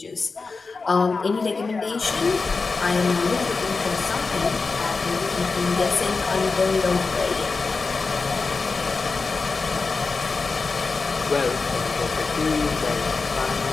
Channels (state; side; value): quieter; right; 4.2 dB